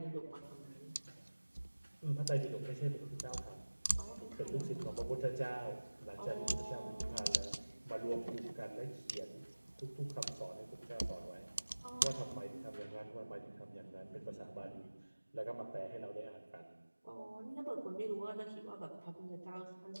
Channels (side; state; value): both; inverted; correlation -1.00